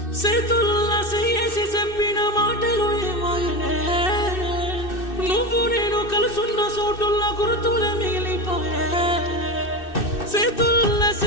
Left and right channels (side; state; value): right; late; 2.6 ms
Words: చేతుల్లా చేసి చెప్పిన మాటలు ఏమాయనే. నువ్వు నేను కలుసున్న చోటుల్ల గుర్తులే మిగిలిపోయే. చేతుల్లా